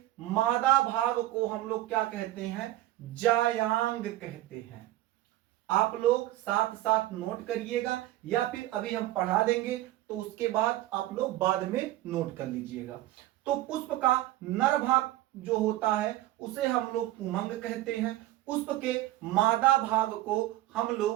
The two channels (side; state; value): left; quieter; 15.6 dB